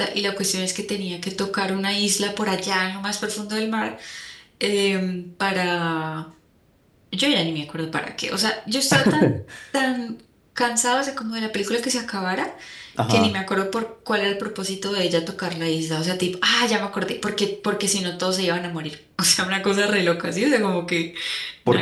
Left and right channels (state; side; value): identical; both; correlation 1.00